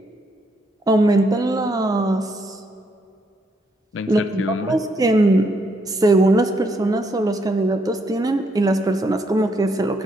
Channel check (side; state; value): both; normal; correlation 0.74